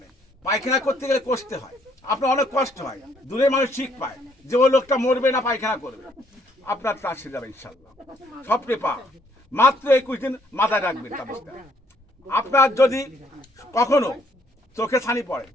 পায়খানা করতে গেলে কষতে হয়, আপনার অনেক কষ্ট হয়, দূরে মানুষ ঠিক পায় যে ওই লোকটা মরবে না পায়খানা করবে, আপনার তা সেরে যাবে ইনশাল্লাহ। স্বপ্নে পা মাত্র 21 দিন মাথায় রাখবেন তাবিজটা। আপনার যদি কখনো চোখে ছানি পড়ে,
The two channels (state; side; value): normal; both; correlation 0.67